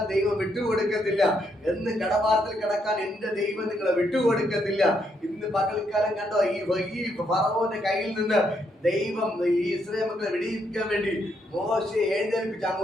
ദൈവം വിട്ടുകൊടുക്കത്തില്ല. എന്ന് കടഭാരത്തിൽ കിടക്കാൻ എന്റെ ദൈവം നിങ്ങളെ വിട്ടുകൊടുക്കത്തില്ല. ഇന്ന് പകൽക്കാലം കണ്ടോ, ഈ ഫറവോന്റെ കയ്യിൽ നിന്ന് ദൈവം ഈ ഇസ്രായേൽ മക്കളെ വെടിയിക്കാൻ വേണ്ടി മോശയെ എഴുന്നേൽപ്പിച്ച്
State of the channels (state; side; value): normal; both; correlation 0.76